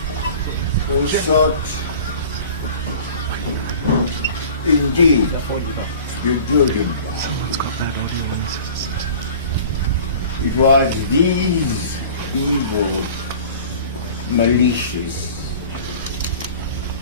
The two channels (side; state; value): both; inverted; correlation -0.43